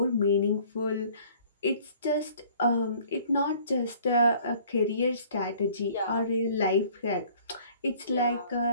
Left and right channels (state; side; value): inverted; both; correlation -0.54